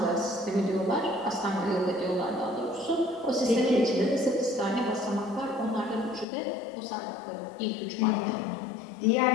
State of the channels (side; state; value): right; drops out; at 6.2 s